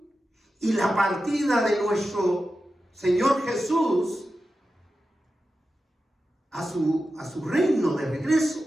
y la partida de nuestro Señor Jesús a su reino de regreso,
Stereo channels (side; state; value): both; normal; correlation 0.92